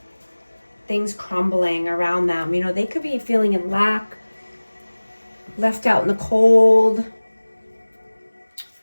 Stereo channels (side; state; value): both; inverted; correlation -1.00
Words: things crumbling around them. They could be feeling in lack, left out in the cold.